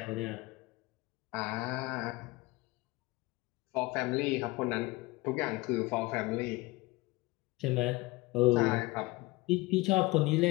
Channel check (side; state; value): right; quieter; 22.0 dB